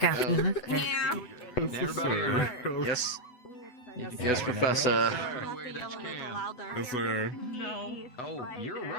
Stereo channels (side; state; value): right; late; 8.0 ms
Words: after. Everybody. Yes. Yes, Yes, sir. Professor. Yes, sir. No. Oh, you're